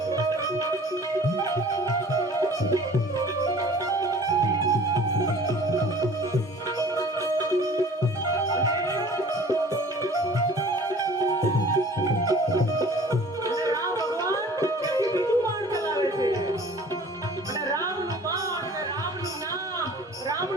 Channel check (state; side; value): normal; both; correlation 0.47